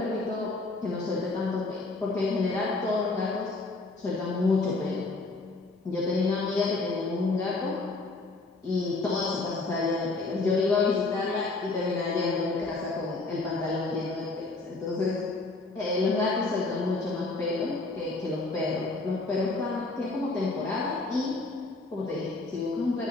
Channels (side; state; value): right; quieter; 3.4 dB